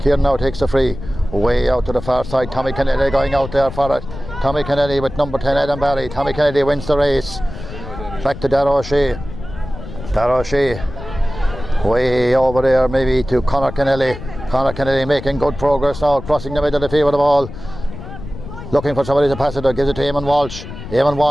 Kieran now takes the free. Way out to the far side. Tommy Kennedy going out there for it. Tommy Kennedy with number 10 Adam Barry. Tommy Kennedy wins the race. Back to Darragh O'Shea. Way over there maybe to Conor Kennedy. Making good progress now, crossing the middle of the field with the ball. Looking for somebody to pass it, gives it to Eamon Walsh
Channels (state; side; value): noise; left; rumble, 12 dB below the sound